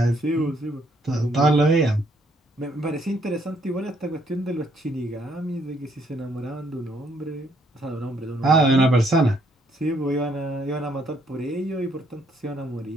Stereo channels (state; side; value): normal; both; correlation 0.69